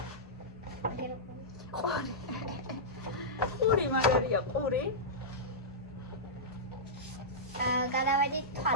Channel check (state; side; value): normal; both; correlation -0.14